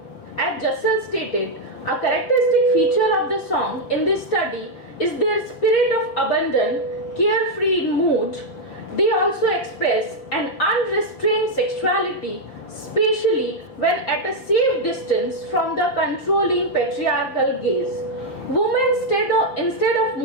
As Jussel stated, a characteristic feature of the song in this study is their spirit of abandon, carefree mood. They also express an unrestrained sexuality, especially when at a safe distance from the controlling patriarchal gaze. Women, instead of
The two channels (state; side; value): late; right; 5.5 ms